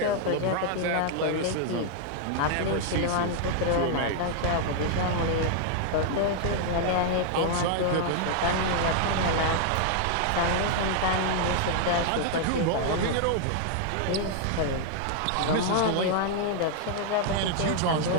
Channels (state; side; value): different; both; correlation 0.00